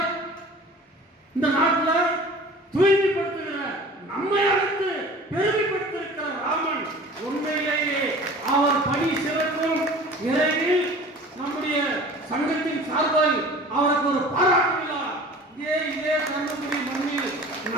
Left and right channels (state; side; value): normal; both; correlation 0.43